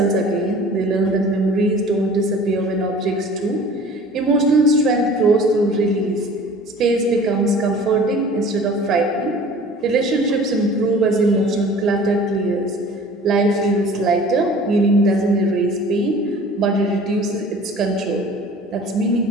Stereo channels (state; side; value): normal; both; correlation 0.46